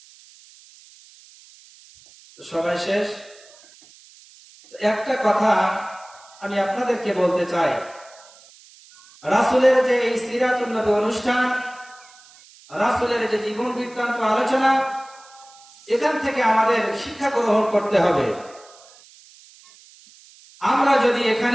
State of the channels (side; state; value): right; noise; hiss, 24 dB below the sound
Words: সবাই শেষ। একটা কথা আমি আপনাদেরকে বলতে চাই, রাসূলের যে এই সিরাতুন নবী অনুষ্ঠান, রাসূলের যে জীবন বৃত্তান্ত আলোচনা, এখান থেকে আমাদের শিক্ষা গ্রহণ করতে হবে। আমরা যদি